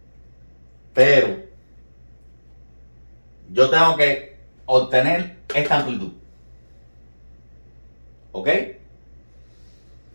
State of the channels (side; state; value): both; inverted; correlation -1.00